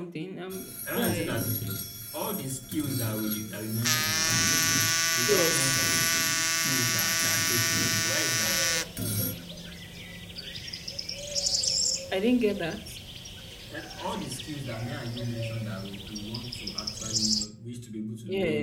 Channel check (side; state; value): both; identical; correlation 1.00